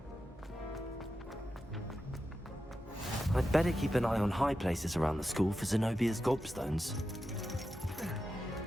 I'd better keep an eye on high places around the school for Zenobia's gobstones.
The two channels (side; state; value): both; normal; correlation 0.90